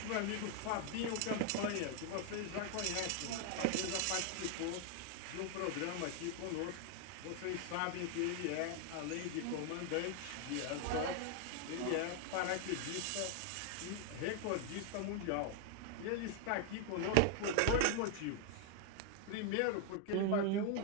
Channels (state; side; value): different; both; correlation 0.00